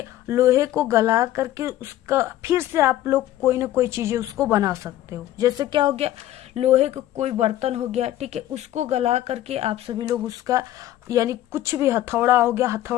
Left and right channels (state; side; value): quieter; right; 13.7 dB